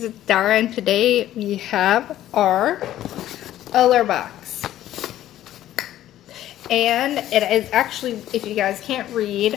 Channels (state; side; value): quieter; right; 13.0 dB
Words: it's Dara, and today we have our Allure box. And it is actually, if you guys can't